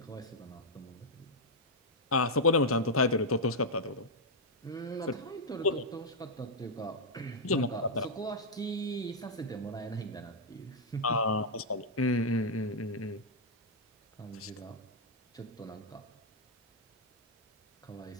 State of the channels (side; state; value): both; normal; correlation -0.04